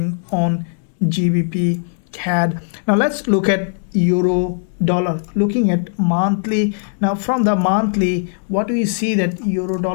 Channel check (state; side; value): silent; right; digital silence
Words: on GBPCAD. Now let's look at euro dollar, looking at monthly. Now from the monthly, what we see that euro